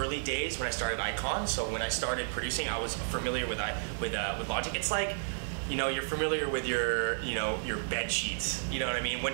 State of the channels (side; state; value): left; silent; 56 dB below the other